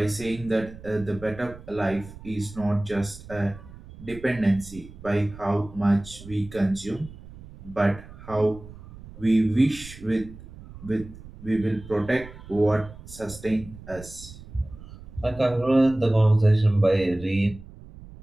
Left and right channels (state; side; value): noise; right; rumble, 17 dB below the sound